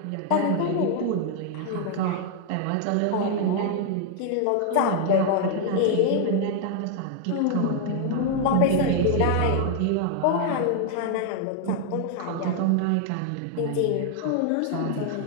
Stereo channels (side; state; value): both; different; correlation 0.00